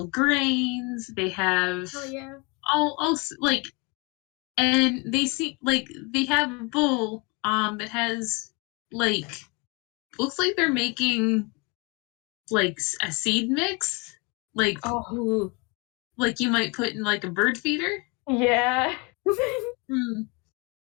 grains, they have all like, and they see like they have a bowl that has like, looks like they're making like a seed mix, like like you might put in like a bird feeder. Yeah.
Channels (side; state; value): right; quieter; 29.8 dB